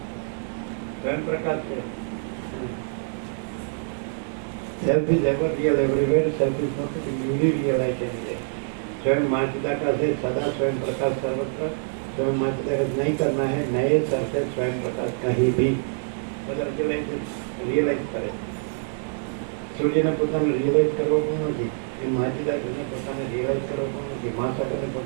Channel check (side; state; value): left; silent; digital silence